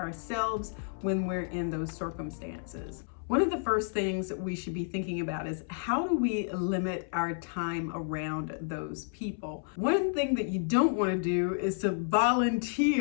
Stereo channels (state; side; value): silent; right; 57 dB below the other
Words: when we're in those circumstances. One of the first things that we should be thinking about is how do we limit our time around those people? One thing that you don't want to do is to